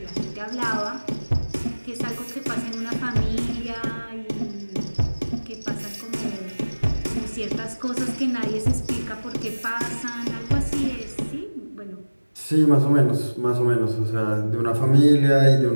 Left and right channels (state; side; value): inverted; both; correlation -1.00